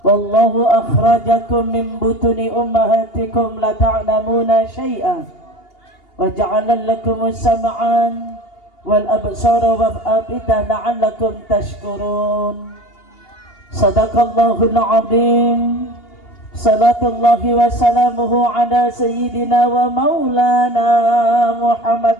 وَاللَّهُ أَخْرَجَكُمْ مِنْ بُطُونِ أُمَّهَاتِكُمْ لَا تَعْلَمُونَ شَيْئًا وَجَعَلَ لَكُمُ السَّمْعَ وَالْأَبْصَارَ وَالْأَفْئِدَةَ لَعَلَّكُمْ تَشْكُرُونَ. Sadaqallahul azim. Salatullahi wa salamuhu ala sayyidina wa maulana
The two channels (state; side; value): late; right; 2.8 ms